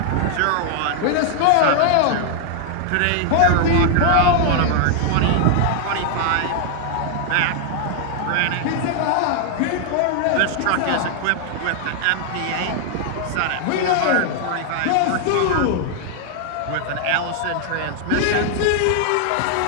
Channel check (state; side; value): different; both; correlation 0.00